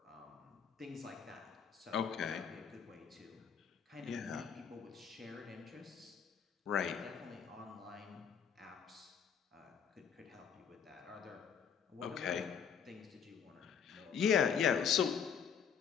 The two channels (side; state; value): right; quieter; 7.3 dB